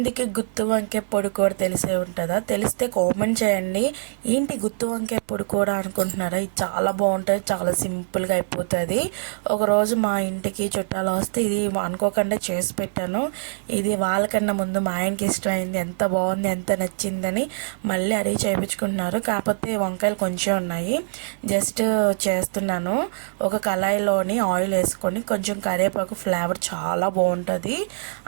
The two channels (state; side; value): silent; left; digital silence